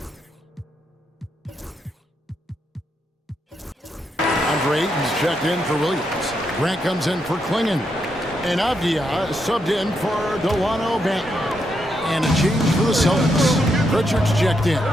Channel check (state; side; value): normal; both; correlation 0.80